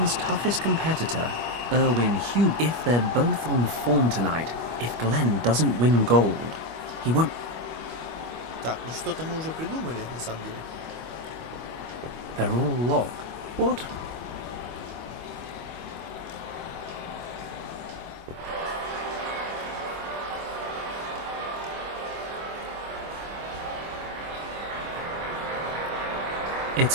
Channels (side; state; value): left; late; 25 ms